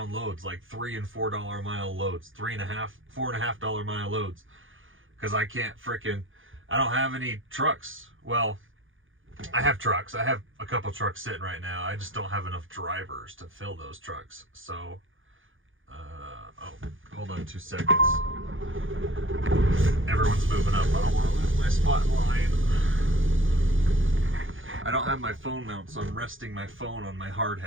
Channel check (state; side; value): late; left; 0.58 ms